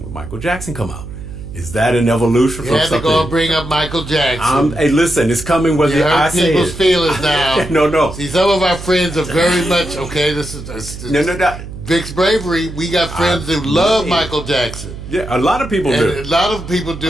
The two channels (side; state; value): right; noise; hum, 11 dB below the sound